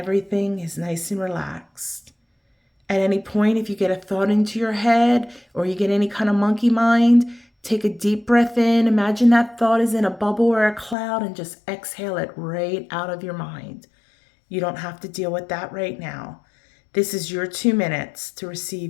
is nice and relaxed. At any point, if you get a thought into your head or you get any kind of monkey mind, take a deep breath in. Imagine that thought is in a bubble or a cloud and just exhale it right out of your mind. You don't have to deal with that right now. This is your 2 minutes to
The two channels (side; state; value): right; drops out; at 11.0 s